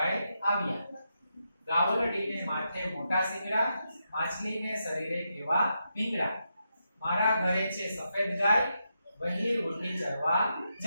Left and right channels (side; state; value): both; inverted; correlation -0.84